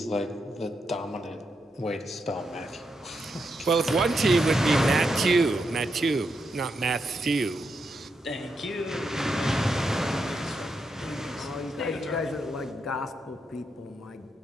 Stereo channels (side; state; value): both; normal; correlation 0.83